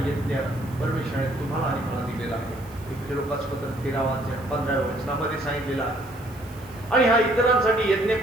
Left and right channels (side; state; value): right; noise; hiss, 23 dB below the sound